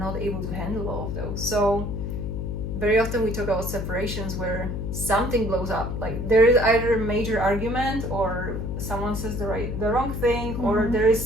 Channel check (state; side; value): noise; left; hum, 4 dB below the sound